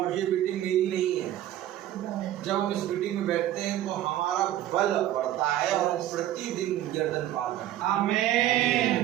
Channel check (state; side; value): quieter; left; 12.9 dB